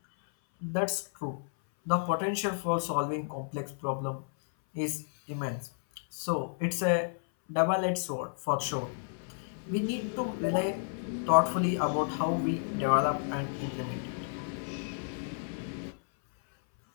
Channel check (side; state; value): right; silent; 57 dB below the other